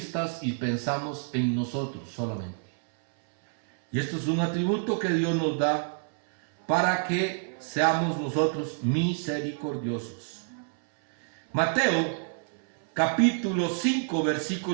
y pensamos en nosotros solamente. Y esto es un atributo que Dios nos da para que seamos nosotros misericordiosos. Mateo capítulo 5,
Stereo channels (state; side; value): silent; left; 59 dB below the other